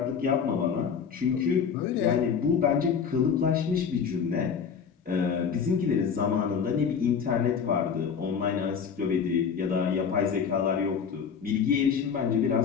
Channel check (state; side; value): quieter; right; 6.7 dB